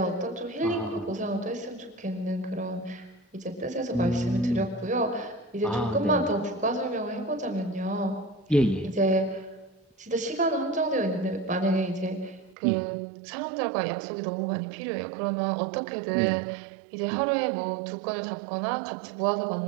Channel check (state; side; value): drops out; left; at 12.6 s